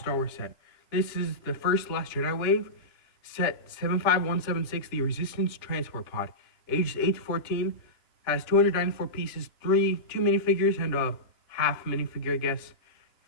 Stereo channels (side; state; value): right; late; 2.9 ms